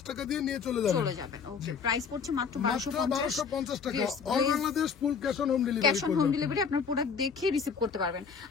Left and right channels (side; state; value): right; quieter; 6.0 dB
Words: টাকা দিয়ে নিয়ে চলে যাবেন। ওকে, প্রাইস পড়ছে মাত্র 1250 টাকা। All Bangladesh full cash on home delivery. Cash on home delivery, আপনার প্রোডাক্ট দেখে রিসিভ করতে পারবেন।